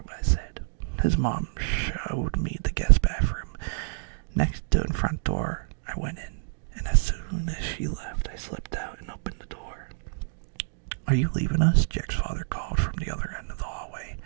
I said. His mom showed me the guest bathroom. Next to the front door, I went in, and as soon as she left, I slipped out and opened the door. Are you leaving us? Jack's father called from the other end of the hallway.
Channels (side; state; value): left; silent; digital silence